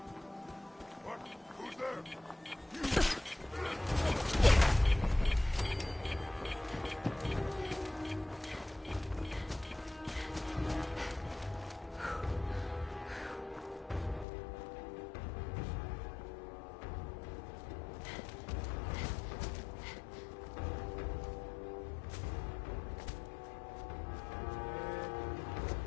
What? Who's there?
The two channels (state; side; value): drops out; right; at 14.2 s